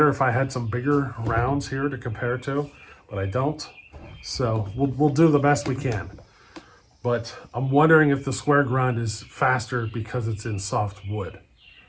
if I had some bigger rounds here to compare to, but I don't. So we'll do the best we can. But I'm wondering if the square grind is faster because it's in soft wood.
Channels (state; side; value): identical; both; correlation 1.00